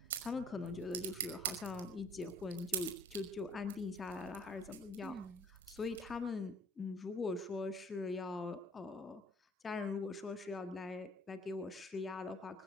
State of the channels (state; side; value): normal; both; correlation 0.54